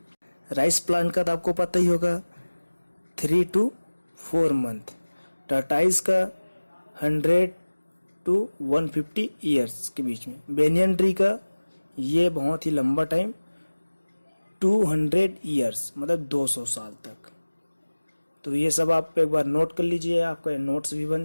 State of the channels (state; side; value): inverted; both; correlation -1.00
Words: राइस प्लांट का तो आपको पता ही होगा 3 to 4 मंथ। टर्टाइज का 100 to 150 ईयर्स के बीच में। बेनियन ट्री का ये बहुत ही लंबा टाइम 200 ईयर्स मतलब 200 साल तक। तो ये सब आप एक बार नोट कर लीजिए, आपका नोट्स भी बन